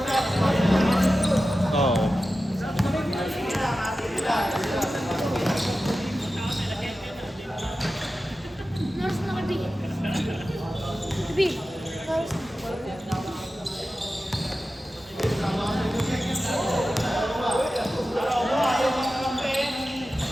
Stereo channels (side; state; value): both; normal; correlation 0.93